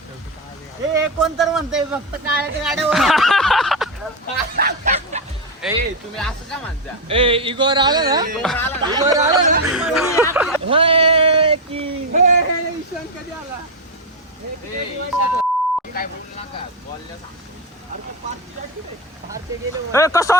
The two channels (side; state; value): both; normal; correlation 0.05